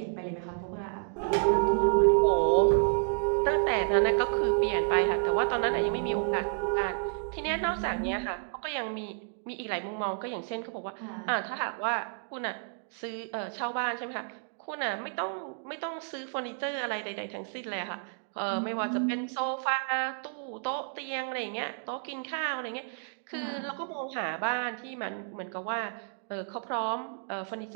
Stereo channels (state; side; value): silent; left; digital silence